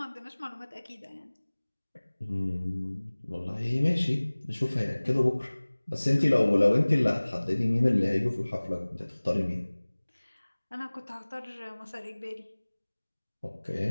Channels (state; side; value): inverted; both; correlation -1.00